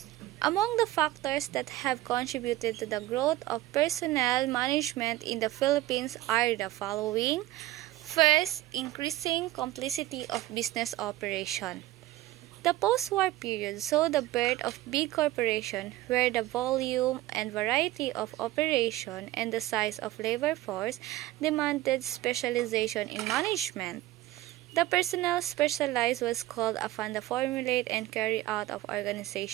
Among the factors that have contributed to the growth of personnel management in the Philippines are the following. First, increasing complexity of business operation. The post-war period saw the birth of big corporations where the volume and variety of operation and the size of labor force demanded specialization in management. The personnel specialized was called upon to formulate and carry out of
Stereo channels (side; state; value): left; quieter; 16.3 dB